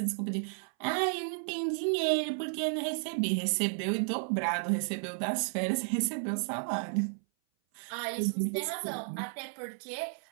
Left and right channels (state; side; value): silent; left; 56 dB below the other